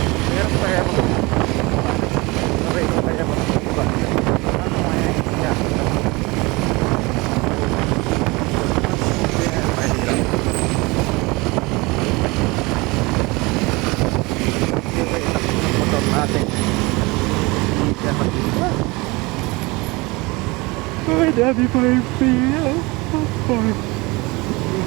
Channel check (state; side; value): quieter; left; 24.5 dB